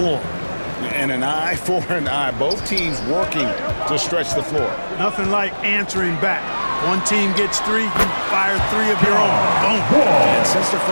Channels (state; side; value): inverted; both; correlation -1.00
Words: And an eye for an eye. Both teams working to stretch the floor. Nothing like answering back. One team gets 3, you fire 3 of your own. Boom. And since the